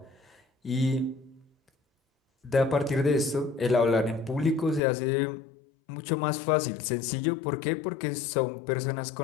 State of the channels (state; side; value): drops out; right; at 4.8 s